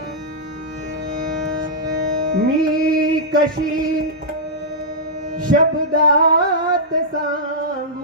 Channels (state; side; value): normal; both; correlation -0.11